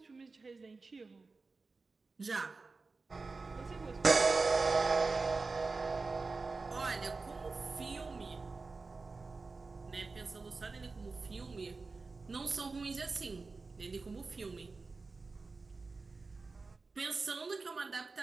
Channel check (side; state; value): left; quieter; 4.0 dB